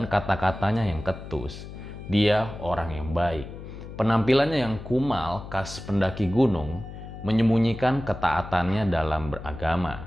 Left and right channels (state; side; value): noise; left; hum, 12 dB below the sound